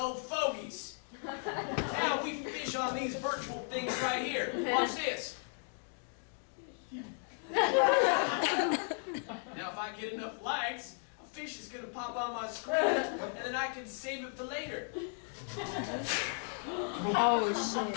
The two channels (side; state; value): right; silent; 54 dB below the other